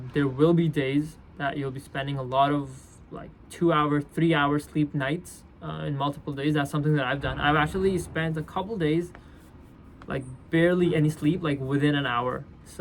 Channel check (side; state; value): both; identical; correlation 1.00